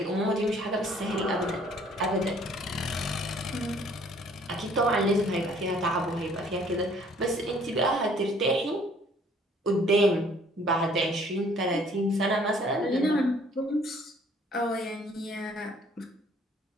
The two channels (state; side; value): normal; both; correlation 0.58